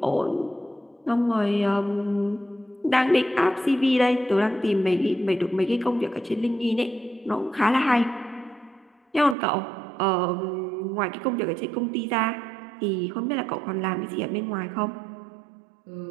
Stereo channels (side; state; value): left; drops out; at 9.3 s